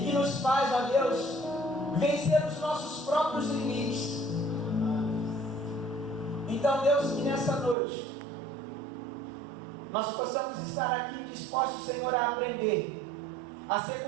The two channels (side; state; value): left; drops out; at 7.8 s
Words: nos faz, ó Deus, vencer os nossos próprios limites. Então, Deus, que nessa noite nós possamos estar aqui dispostos, Senhor, a aprender, a ser